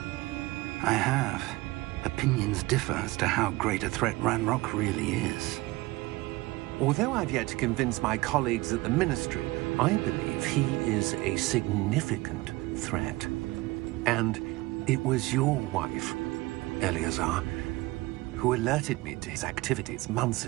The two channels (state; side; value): quieter; left; 21.0 dB